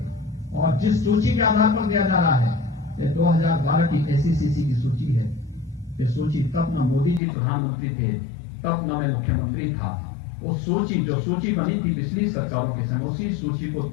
और जिस सूची के आधार पर दिया जा रहा है, ये 2012 की एसईसीसी की सूची है। ये सूची तब न मोदी जी प्रधानमंत्री थे, तब न मैं मुख्यमंत्री था। वो सूची जो सूची बनी थी पिछली सरकारों के समय, उसी सूची को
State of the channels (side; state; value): right; drops out; at 7.2 s